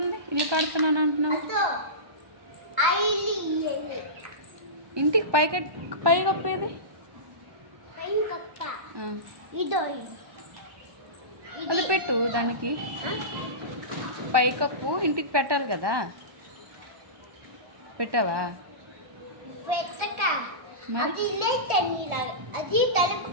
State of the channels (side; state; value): left; late; 1.2 ms